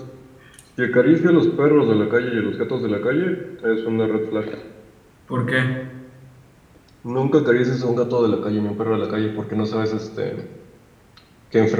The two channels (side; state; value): both; identical; correlation 1.00